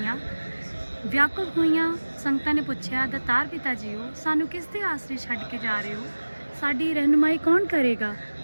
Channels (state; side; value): inverted; both; correlation -1.00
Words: ਸੰਗਤਾਂ ਨੇ ਪੁੱਛਿਆ, ਦਤਾਰ ਪਿਤਾ ਜੀਓ, ਸਾਨੂੰ ਕਿਸ ਦੇ ਆਸਰੇ ਛੱਡ ਕੇ ਜਾ ਰਹੇ ਹੋ? ਸਾਡੀ ਰਹਿਨੁਮਾਈ ਕੌਣ ਕਰੇਗਾ?